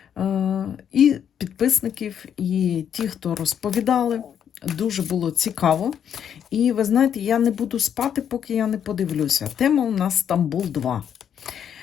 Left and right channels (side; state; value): right; quieter; 8.7 dB